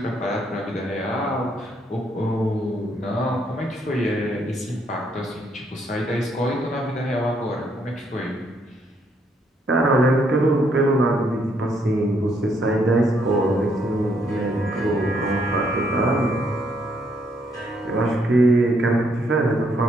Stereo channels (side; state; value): both; normal; correlation 0.71